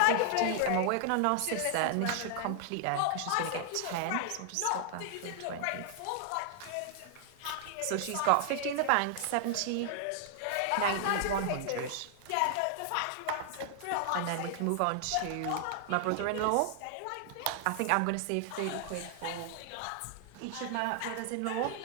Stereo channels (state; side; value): different; both; correlation 0.00